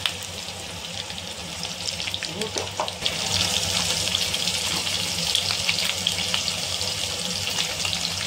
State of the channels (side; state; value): both; identical; correlation 1.00